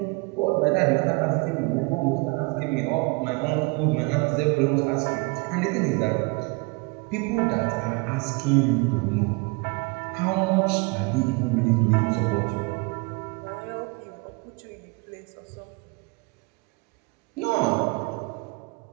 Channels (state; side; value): quieter; left; 28.2 dB